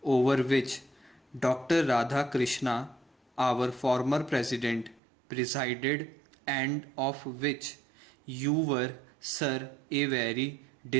over which Dr. Radha Krishna, our former president, presided, and of which you were, sir, a very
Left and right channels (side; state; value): left; drops out; at 5.0 s